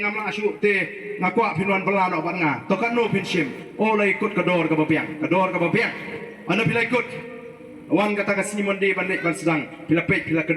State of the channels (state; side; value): identical; both; correlation 1.00